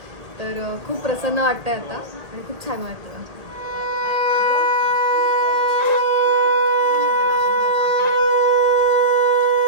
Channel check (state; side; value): late; left; 2.0 ms